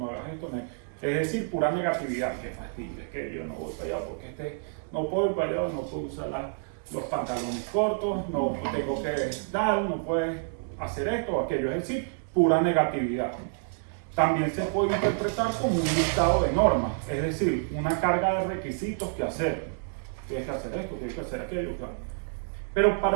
hagas esto. Es decir, pura negatividad. Qué fastidio, es que yo no voy para allá porque no puedo ir para allá, no puedo usar los pantalones cortos, no tengo que dar, no puedes hacer esto o aquello. Es decir, pura negatividad. También se puede interpretar como un listado de normas, es decir, una carga de requisitos que hacer. Tienes que hacer esto, tienes que hacer aquello. Claro. Pero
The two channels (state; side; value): silent; left; 58 dB below the other